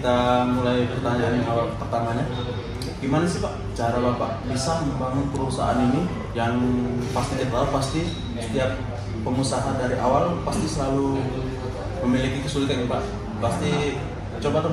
mulai pertanyaan yang awal pertamanya. Gimana sih Pak cara Bapak bisa membangun perusahaan ini yang pasti kita tahu pasti setiap pengusaha dari awal pasti selalu memiliki kesulitan Pak. Pasti coba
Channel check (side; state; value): both; identical; correlation 1.00